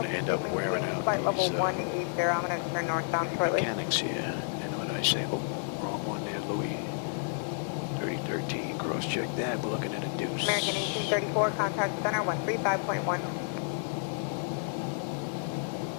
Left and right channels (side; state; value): right; silent; digital silence